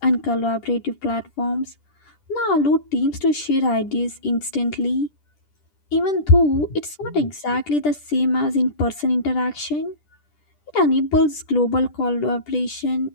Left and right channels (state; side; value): late; right; 10 ms